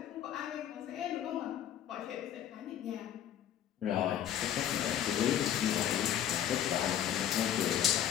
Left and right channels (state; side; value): quieter; right; 10.5 dB